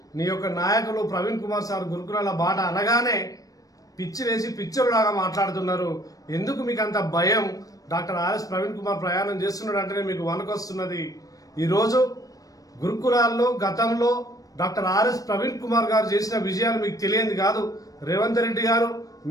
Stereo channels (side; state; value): right; late; 0.17 ms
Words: నీ యొక్క నాయకులు ప్రవీణ్ కుమార్ సార్ గురుకులాల బాట అనగానే పిచ్చి వేసి పిచ్చోళ్ళలాగా మాట్లాడుతున్నారు. ఎందుకు మీకు అంత భయం? డాక్టర్ ఆర్ఎస్ ప్రవీణ్ కుమార్ ప్రయాణం చేస్తున్నాడు అంటేనే మీకు వణకొస్తున్నది. ఈరోజు గురుకులాల్లో గతంలో డాక్టర్ ఆర్ఎస్ ప్రవీణ్ కుమార్ గారు చేసిన విజయాలు మీకు తెలియంది కాదు. రేవంత్ రెడ్డి గారు